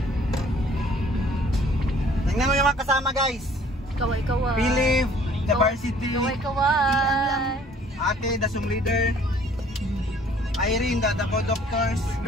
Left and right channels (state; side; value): normal; both; correlation 0.56